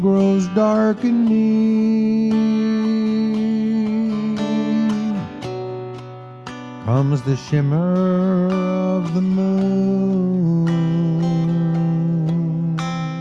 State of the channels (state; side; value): identical; both; correlation 1.00